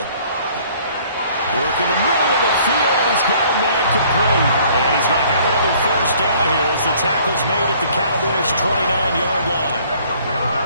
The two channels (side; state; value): both; inverted; correlation -0.57